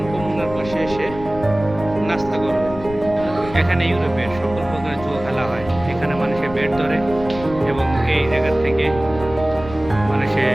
কমুনার পাশে এসে নাস্তা করবে। এখানে ইউরোপের সকল প্রকার জুয়া খেলা হয়। এখানে মানুষের বেট ধরে এবং এই জায়গা থেকে মানুষে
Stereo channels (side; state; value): left; noise; rumble, 13 dB below the sound